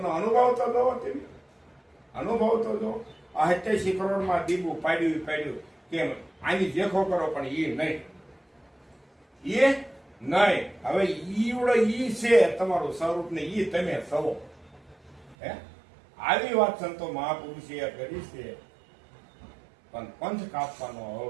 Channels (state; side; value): drops out; left; at 15.4 s